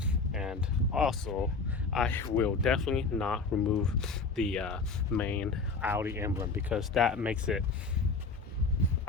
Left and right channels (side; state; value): right; quieter; 4.3 dB